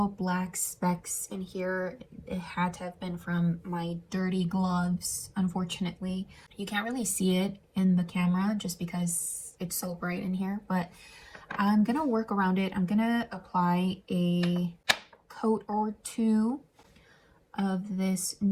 black specks in here. It had to have been from my dirty gloves, unfortunately. You can't really see it in the camera just because it's so bright in here, but I'm gonna work around it. I'm gonna apply a coat or two of this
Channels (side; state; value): both; identical; correlation 1.00